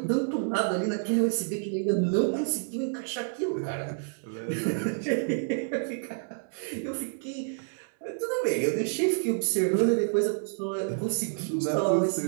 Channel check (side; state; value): left; silent; digital silence